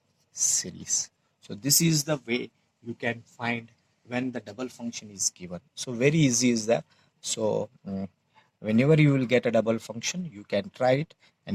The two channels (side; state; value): both; identical; correlation 1.00